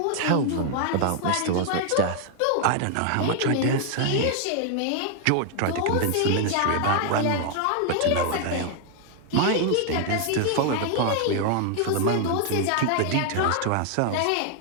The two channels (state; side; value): different; both; correlation 0.00